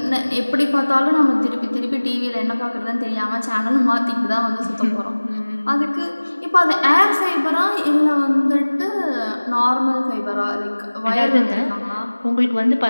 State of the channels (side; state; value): both; inverted; correlation -1.00